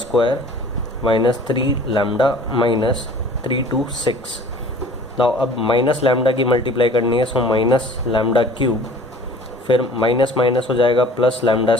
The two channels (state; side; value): normal; both; correlation 0.48